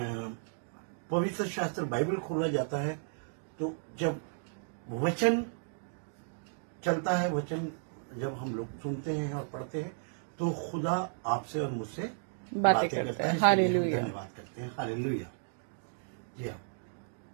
पवित्र शास्त्र बाइबल खोला जाता है, तो जब वचन चलता है, वचन जब हम लोग सुनते हैं और पढ़ते हैं, तो खुदा आपसे और मुझसे बातें करता है। हालेलुया। धन्यवाद करते हैं। हालेलुया। जी हाँ,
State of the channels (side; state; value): left; silent; digital silence